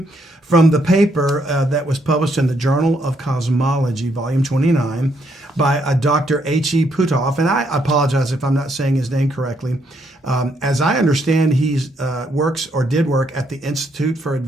from the paper that was published in the Journal of Cosmology, volume 29, by Dr. H.E. Puthoff. And I apologize if I'm not saying his name correctly. As I understand, he did work at the Institute for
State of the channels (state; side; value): normal; both; correlation 0.73